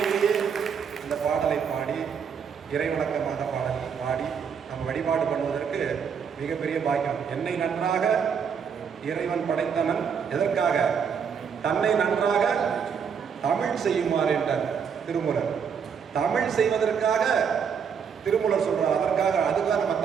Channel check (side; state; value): left; quieter; 6.9 dB